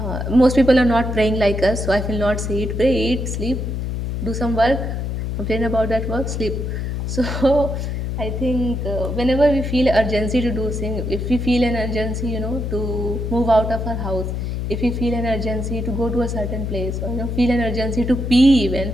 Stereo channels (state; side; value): noise; left; hum, 3 dB below the sound